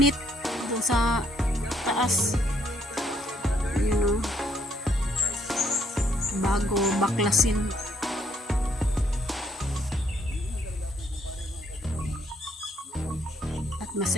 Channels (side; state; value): both; normal; correlation 0.70